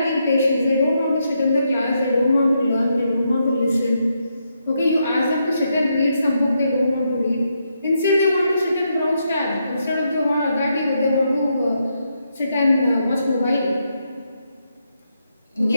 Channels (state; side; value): inverted; both; correlation -0.81